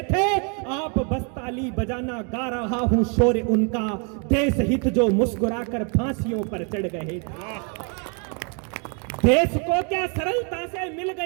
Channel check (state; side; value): quieter; left; 37.0 dB